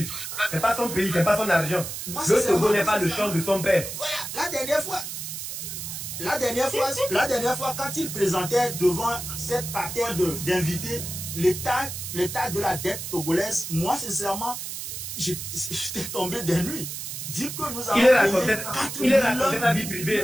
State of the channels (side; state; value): right; noise; hiss, 7 dB below the sound